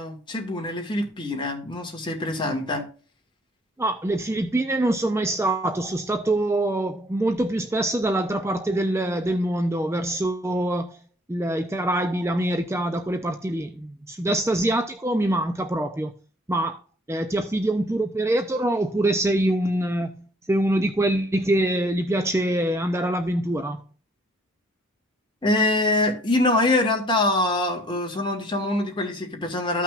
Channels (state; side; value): normal; both; correlation 0.60